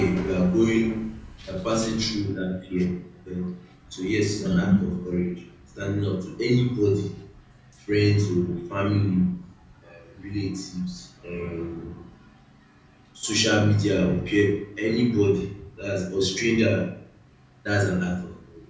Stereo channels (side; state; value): both; identical; correlation 1.00